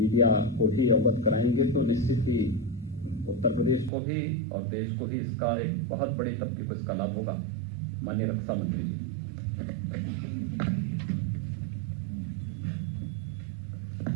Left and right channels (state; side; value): drops out; left; at 3.9 s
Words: को भी अवगत कराएंगे तो निश्चित ही उत्तर प्रदेश को भी और देश को भी इसका एक बहुत बड़ी तबके को इसका लाभ होगा। माननीय रक्षा मंत्री जी।